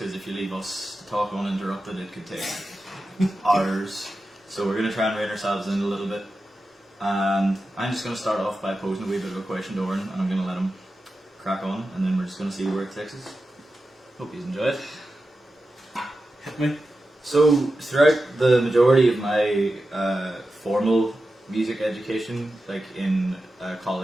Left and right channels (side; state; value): both; normal; correlation 0.92